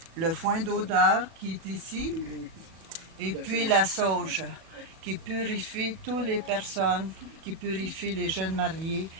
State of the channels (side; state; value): left; late; 37 ms